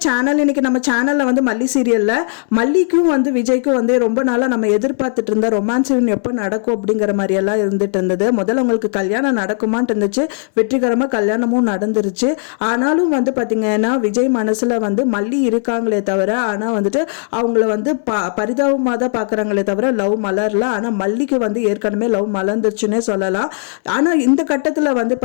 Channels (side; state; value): right; silent; 62 dB below the other